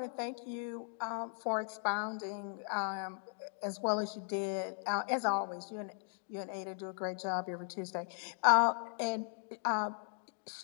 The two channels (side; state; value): right; silent; 53 dB below the other